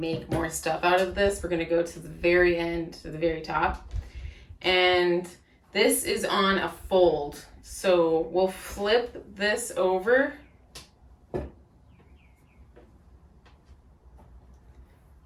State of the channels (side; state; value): both; identical; correlation 1.00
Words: more stuff out of this, we're gonna go to the very end, to the very top. And this is on a fold. So we'll flip this over.